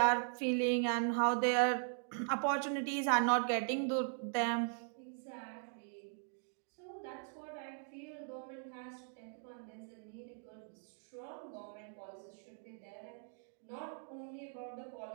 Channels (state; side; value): silent; left; 51 dB below the other